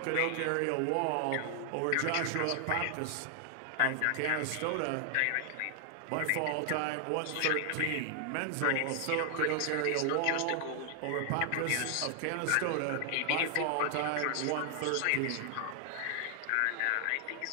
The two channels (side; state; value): both; different; correlation 0.00